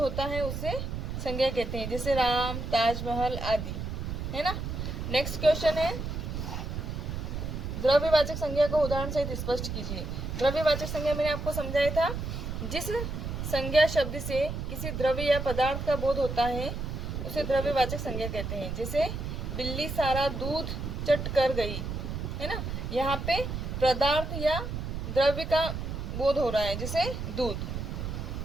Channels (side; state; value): right; noise; rumble, 5 dB below the sound